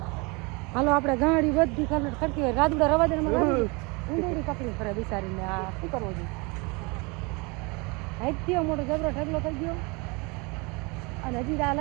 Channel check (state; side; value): quieter; left; 28.3 dB